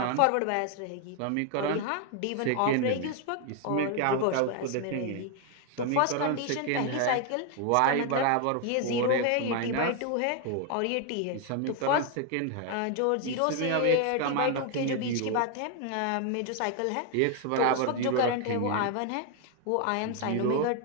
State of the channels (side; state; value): both; different; correlation 0.01